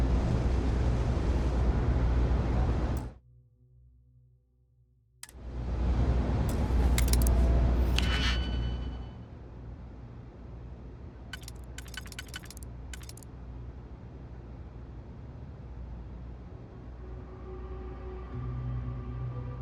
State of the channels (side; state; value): both; identical; correlation 1.00